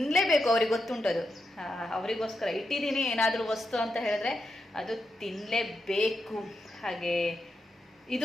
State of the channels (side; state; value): both; normal; correlation 0.85